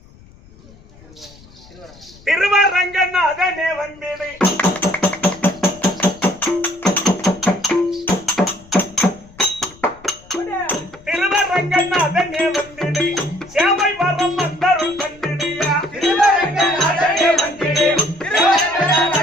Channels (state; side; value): noise; left; rumble, 24 dB below the sound